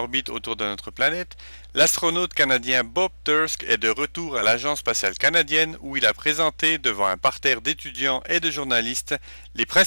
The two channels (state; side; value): inverted; both; correlation -1.00